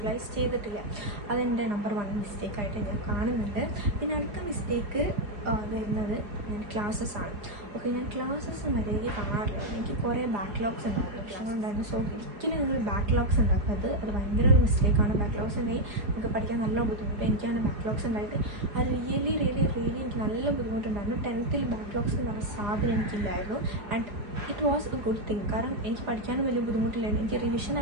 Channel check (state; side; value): late; left; 4.8 ms